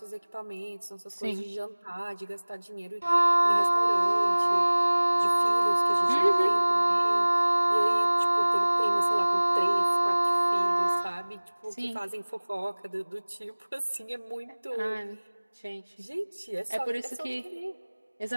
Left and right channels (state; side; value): inverted; both; correlation -1.00